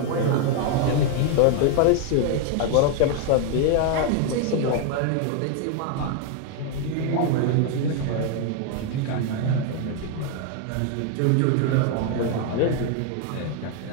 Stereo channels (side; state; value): both; different; correlation 0.00